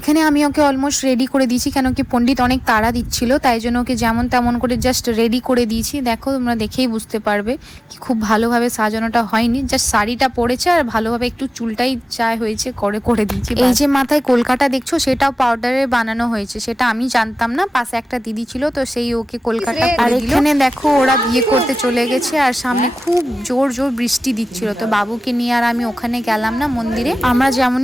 আমি ওকে অলমোস্ট রেডি করে দিয়েছি, কেন কি পণ্ডিত অনেক তাড়া দিচ্ছিল, তাই জন্য ওকে যেমন তেমন করে জাস্ট রেডি করে দিয়েছি। দেখো তোমরা দেখেই বুঝতে পারবে কি খুব ভালোভাবে সাজানোটা হয়নি, জাস্ট শাড়িটা পরেছে আর ভালোভাবে একটু চুলটাই যা হয়েছে করে দিয়েছি। এই যে মাথায় কলকাতা দেখছো, সেটাও পাউডারে বানানো হয়েছে, সেটা আমি জানতাম না। পাশে একটা দিদি ছিল, তো সেই ওকে কলকাতা করে দিল। এখানে দেখো ওরা বিয়ে করতে চলে গেছে আর সামনে খুব জোর জোর বৃষ্টি দিচ্ছিল, তো বাবুকে নিয়ে আর আমি ওখানে গেলাম না মন্দিরে। আমরা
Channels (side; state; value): both; normal; correlation 0.96